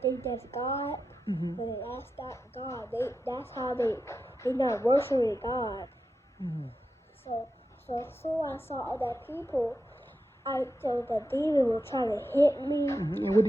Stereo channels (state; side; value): normal; both; correlation 0.89